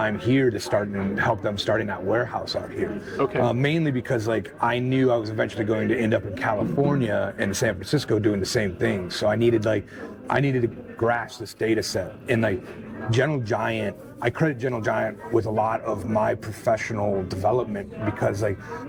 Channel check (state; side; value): identical; both; correlation 1.00